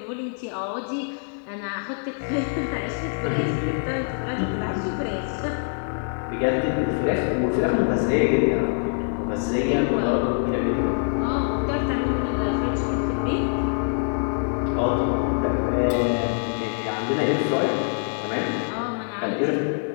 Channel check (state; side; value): silent; right; digital silence